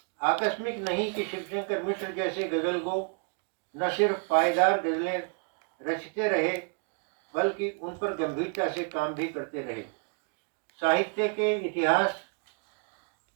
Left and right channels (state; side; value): quieter; left; 38.6 dB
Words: आकस्मिक नहीं कि शिवशंकर मिश्र जैसे गजल गो न सिर्फ पायदार गजलें रचते रहे बल्कि उन पर गंभीरता से काम भी करते रहे। साहित्य के